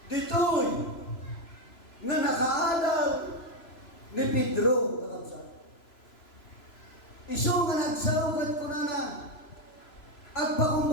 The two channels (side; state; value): right; late; 3.0 ms